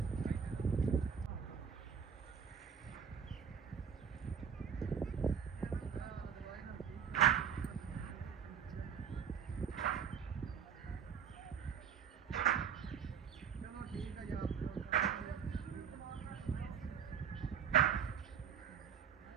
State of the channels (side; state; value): left; quieter; 7.5 dB